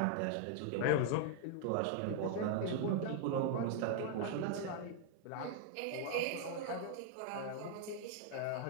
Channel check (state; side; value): different; both; correlation 0.00